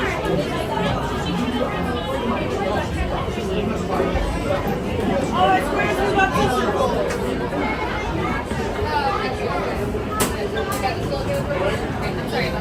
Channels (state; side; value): identical; both; correlation 1.00